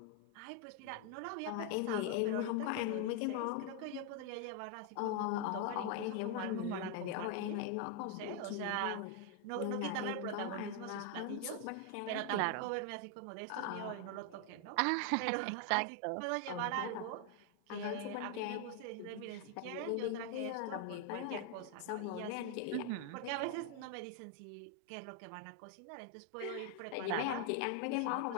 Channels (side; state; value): both; different; correlation 0.01